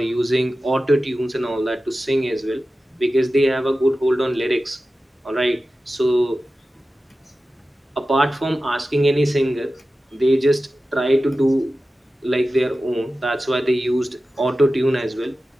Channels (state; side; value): normal; both; correlation 0.94